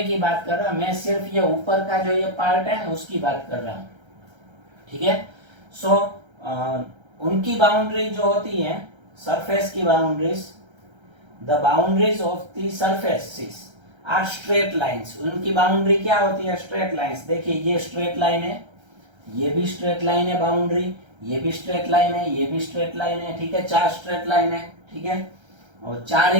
की बात कर रहे हो, मैं सिर्फ ये ऊपर का जो ये पार्ट है उसकी बात कर रहा हूँ। ठीक है, सो उनकी बाउंड्री जो होती है, सरफेस की boundaries, the boundaries of the surfaces are straight lines. उनकी बाउंड्री क्या होती है? Straight lines. देखिए ये स्ट्रेट लाइन है, ये भी स्ट्रेट लाइन है बाउंड्री, ये भी स्ट्रेट लाइन है, ये भी स्ट्रेट लाइन है। ठीक है, 4 स्ट्रेट लाइन है। ठीक है, और 4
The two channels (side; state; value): left; late; 1.3 ms